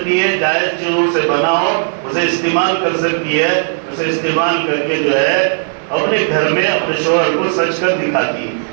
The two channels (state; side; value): silent; left; digital silence